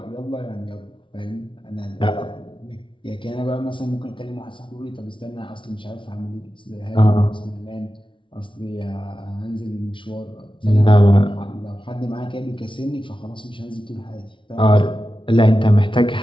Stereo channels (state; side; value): late; right; 0.25 ms